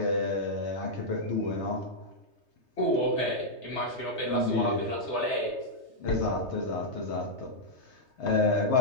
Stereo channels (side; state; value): right; late; 3.2 ms